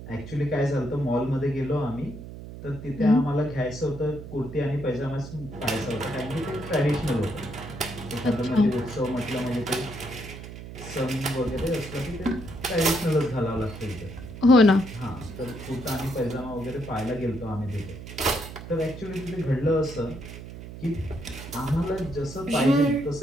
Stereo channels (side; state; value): right; noise; hum, 12 dB below the sound